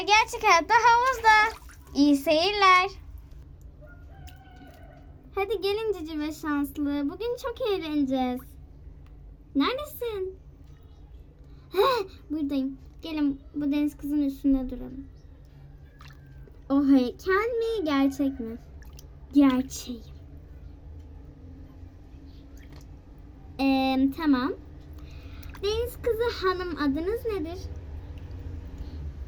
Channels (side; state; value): both; identical; correlation 1.00